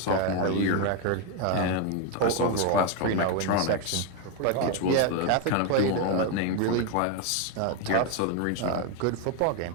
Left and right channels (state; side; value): different; both; correlation 0.01